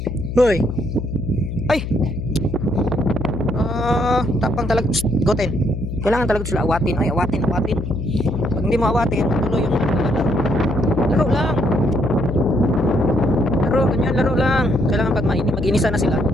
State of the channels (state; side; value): noise; left; hum, 5 dB below the sound